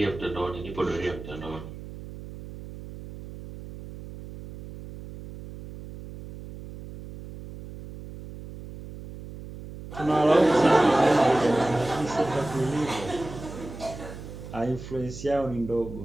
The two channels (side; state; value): right; noise; hum, 13 dB below the sound